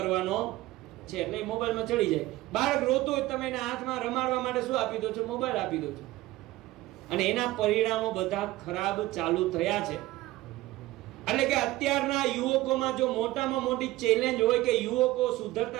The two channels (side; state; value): left; quieter; 17.6 dB